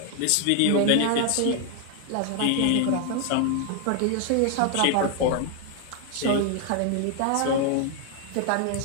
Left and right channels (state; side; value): different; both; correlation 0.00